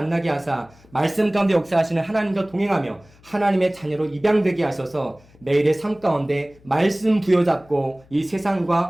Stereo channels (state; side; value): noise; left; hum, 28 dB below the sound